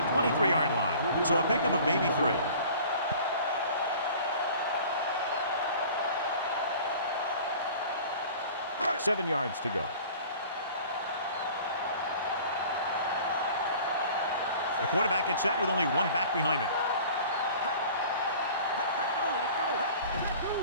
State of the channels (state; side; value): inverted; both; correlation -0.45